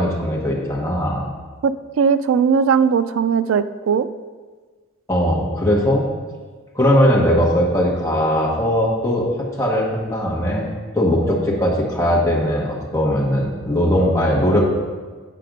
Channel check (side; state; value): both; normal; correlation 0.45